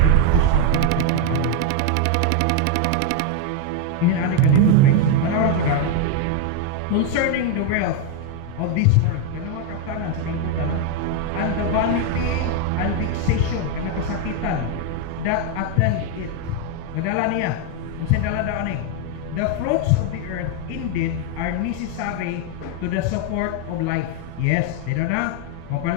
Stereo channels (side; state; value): both; different; correlation 0.01